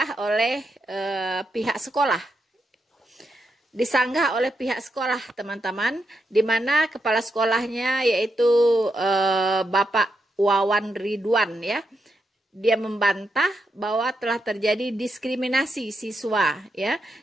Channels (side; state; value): both; normal; correlation 0.83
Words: oleh pihak sekolah. Disanggah oleh pihak sekolah teman-teman, di mana kepala sekolahnya yaitu Bapak Wawan Ridwan ya. Dia membantah bahwa telah terjadi diskriminasi siswa ya